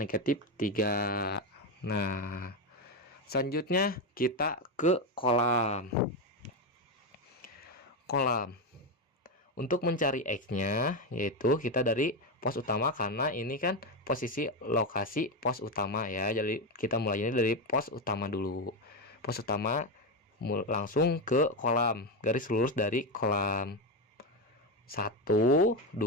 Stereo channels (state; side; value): normal; both; correlation 0.11